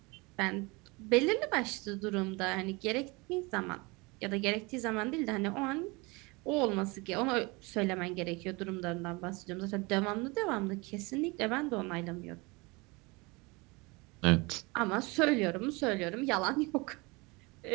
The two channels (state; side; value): quieter; left; 26.1 dB